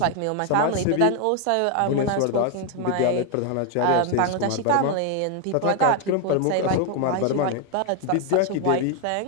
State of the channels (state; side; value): different; both; correlation 0.01